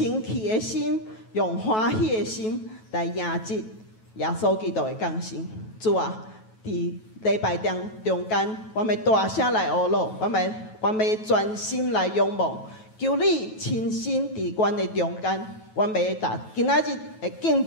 气的心、用欢喜的心来迎接耶稣基督的降生。主啊，伫礼拜中间，阮要大声来学乐，阮要专心来仰望，求你亲身伫阮的中间，阮要今仔日的敬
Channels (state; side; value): late; right; 9.2 ms